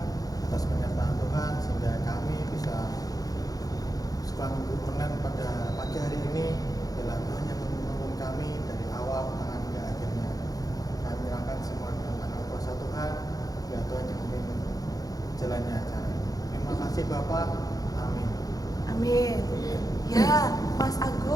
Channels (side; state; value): right; late; 0.18 ms